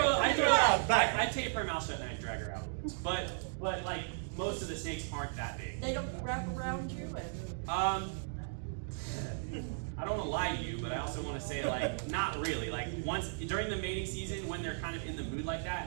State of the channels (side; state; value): left; silent; digital silence